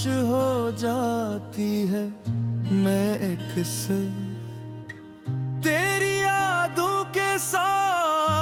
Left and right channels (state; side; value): identical; both; correlation 1.00